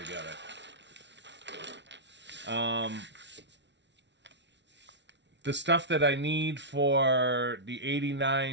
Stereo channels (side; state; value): left; late; 0.51 ms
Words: together. The stuff that I need for the